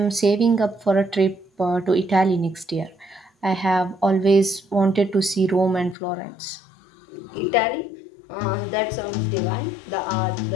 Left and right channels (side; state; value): right; drops out; at 6.0 s